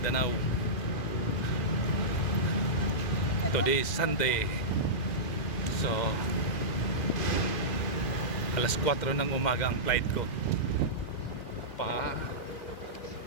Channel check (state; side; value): late; right; 2.1 ms